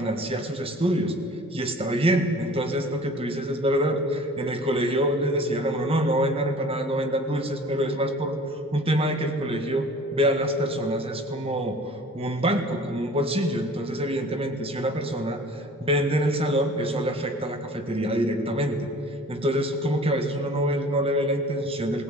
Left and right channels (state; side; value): normal; both; correlation 0.46